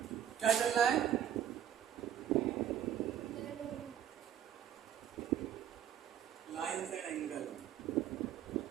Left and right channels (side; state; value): left; quieter; 9.9 dB